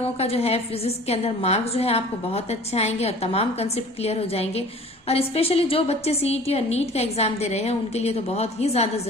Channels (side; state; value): both; normal; correlation 0.46